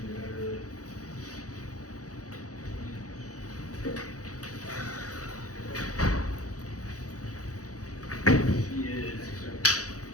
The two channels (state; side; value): late; right; 0.67 ms